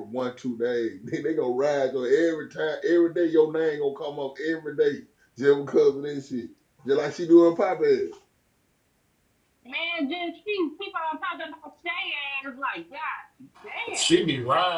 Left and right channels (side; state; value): both; identical; correlation 1.00